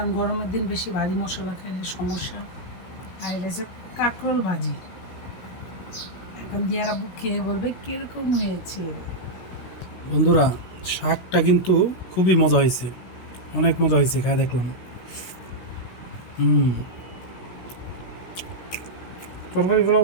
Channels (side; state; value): right; late; 16 ms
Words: গরমের দিন বেশি ভারী মশলা খাইলে সমস্যা। আর এটা হচ্ছে কাঁকরোল ভাজি। এখন দিয়ারা বুক খেয়ে বলবে কিরকম হয়েছে। বন্ধুরা, শাকটা কিন্তু খুবই মজা হয়েছে, অনেক মজা হয়েছে, খাই দেখলাম। তরকারিগুলো